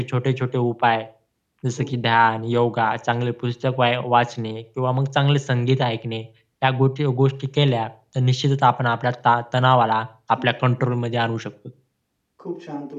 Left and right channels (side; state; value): both; identical; correlation 1.00